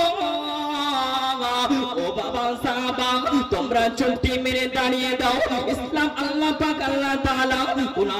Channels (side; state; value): both; identical; correlation 1.00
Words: ও বাবা সাহাবা, তোমরা চুক্তি মেরে দাঁড়িয়ে দাও। ইসলাম আল্লাহ পাক আল্লাহ তাআলা